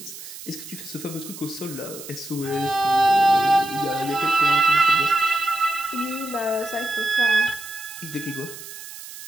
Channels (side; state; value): right; noise; hiss, 13 dB below the sound